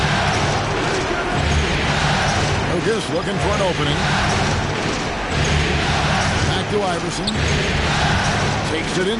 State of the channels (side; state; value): both; identical; correlation 1.00